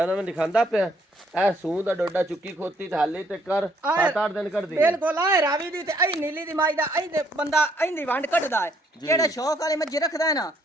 मैं दिखांदा पे ए सून दा डोडा चुक्की खोती ते हाली ते कर 7-8 दिन कर दी। बिल्कुल आ रावी दी ते आई नीली दी माई दा आई दे बंदा आई दी वंड कटदा है केड़ा शौक वाले मज्जी रखदा है ना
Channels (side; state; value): both; normal; correlation 0.67